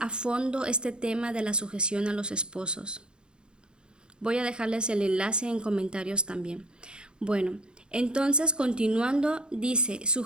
fondo este tema de la sujeción a los esposos. Voy a dejarles el enlace en comentarios también. Bueno, entonces continuando dice,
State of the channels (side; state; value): left; late; 0.050 ms